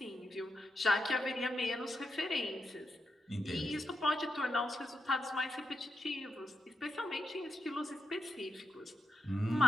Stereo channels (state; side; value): normal; both; correlation 0.84